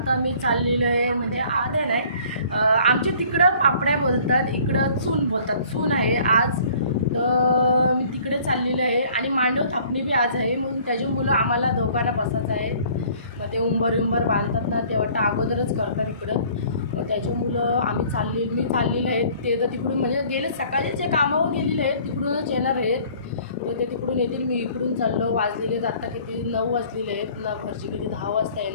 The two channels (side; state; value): both; inverted; correlation -0.54